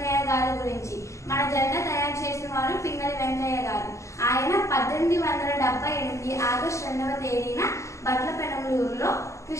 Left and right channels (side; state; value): right; late; 0.14 ms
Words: గారి గురించి. మన జెండా తయారు చేసిన వారు పింగళి వెంకయ్య గారు. ఆయన 1878 ఆగస్టు 2వ తేదీన బట్లపెనమలూరులో